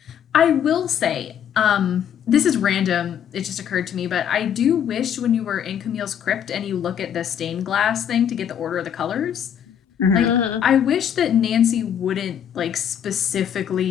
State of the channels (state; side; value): quieter; right; 8.9 dB